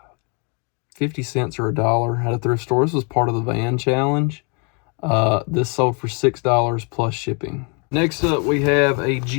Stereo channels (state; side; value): quieter; right; 34.9 dB